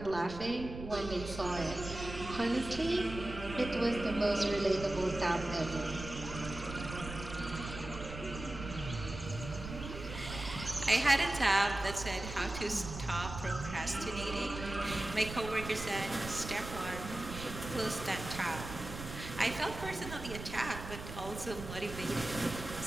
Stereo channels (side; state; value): right; noise; rumble, 10 dB below the sound